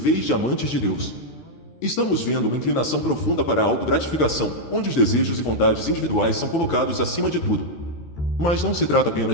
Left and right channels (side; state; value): right; late; 13 ms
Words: de amantes de Deus. Estamos vendo uma inclinação profunda para a autogratificação, onde os desejos e vontades individuais são colocados acima de tudo. Mas não se trata